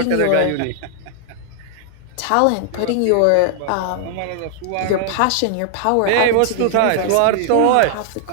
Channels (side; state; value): both; different; correlation 0.00